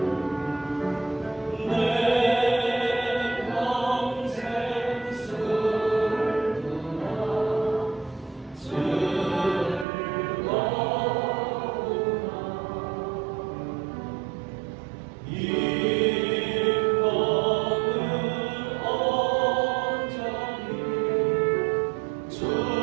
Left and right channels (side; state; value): left; drops out; at 9.9 s